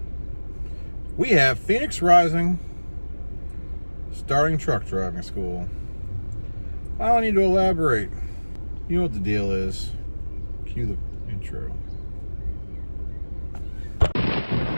We have Phoenix Rising starting truck driving school. I don't need to elaborate. You know what the deal is. Cue the intro.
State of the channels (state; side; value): inverted; both; correlation -1.00